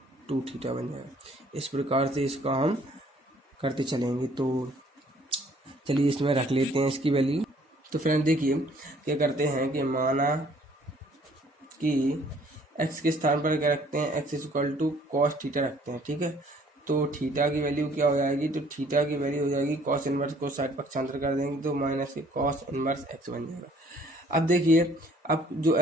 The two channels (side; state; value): both; normal; correlation 0.59